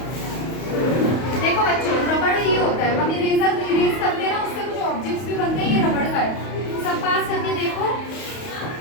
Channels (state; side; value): late; right; 31 ms